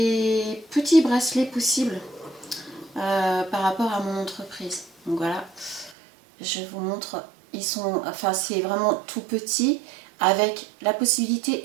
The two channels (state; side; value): drops out; left; at 6.0 s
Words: petits bracelets possibles par rapport à mon entreprise. Donc voilà, je vous montre. C'est vraiment tout petit avec la